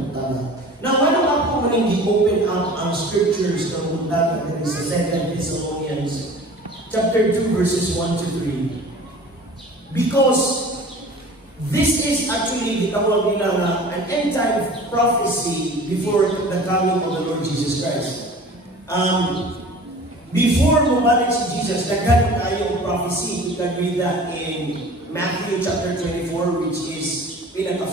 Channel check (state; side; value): normal; both; correlation 0.43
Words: tama. Now, why don't ako maning open up ang scriptures ng bundaga that is sa 2 Thessalonians chapter 2 verses 1 to 3. Because this is actually gitawag nila na an end time prophecy before the coming of the Lord Jesus Christ. Before bumalik si Jesus, daghan tayo prophecy. You can read that in Matthew chapter 24, which is